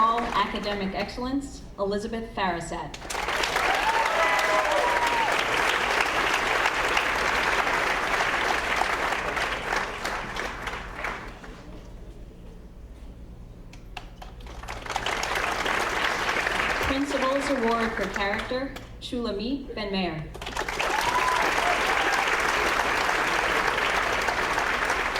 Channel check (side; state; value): both; identical; correlation 1.00